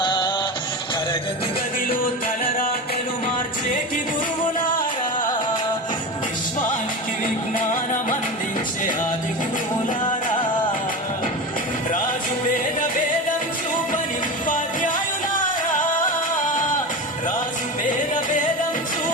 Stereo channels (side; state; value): both; normal; correlation 0.25